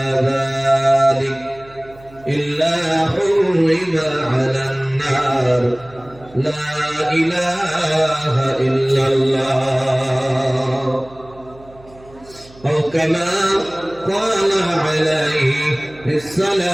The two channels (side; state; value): right; noise; hum, 23 dB below the sound